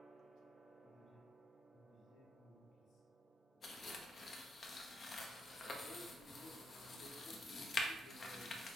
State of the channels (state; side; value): normal; both; correlation 0.80